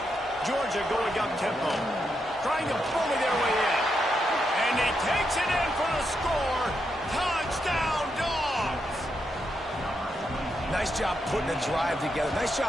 Georgia going up tempo, trying to bully their way in. And he takes it in for the score. Touchdown, Dogs! Nice job putting a drive together. Nice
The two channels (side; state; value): both; normal; correlation 0.82